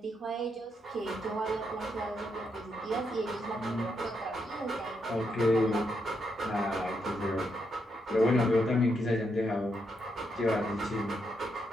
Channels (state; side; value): normal; both; correlation 0.79